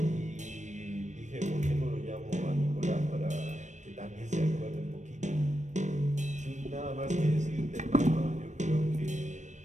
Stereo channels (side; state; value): left; late; 0.35 ms